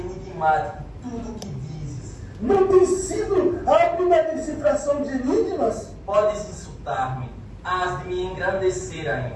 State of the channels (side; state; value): both; identical; correlation 1.00